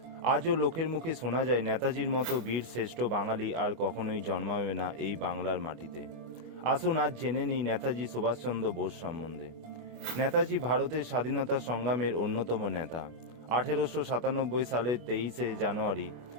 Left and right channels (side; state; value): left; late; 25 ms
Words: আজও লোকের মুখে শোনা যায় নেতাজির মতো বীর শ্রেষ্ঠ বাঙালি আর কখনোই জন্মাবে না এই বাংলার মাটিতে। আসুন আজ জেনে নিই নেতাজি সুভাষচন্দ্র বোস সম্বন্ধে। নেতাজি ভারতের স্বাধীনতা সংগ্রামের অন্যতম নেতা। 1897 সালের 23শে জানুয়ারি